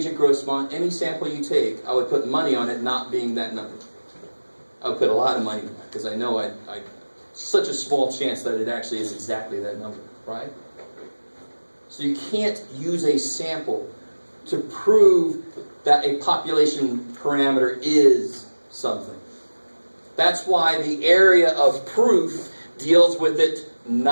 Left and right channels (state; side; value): inverted; both; correlation -1.00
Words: at Grossmont. Any sample you take, I would put money on it not being that number. I would put a lot of money on it because I know I such a small chance that it actually is exactly that number, right? So you can't use a sample to prove that a population parameter is something. That's why the area of proof deals with it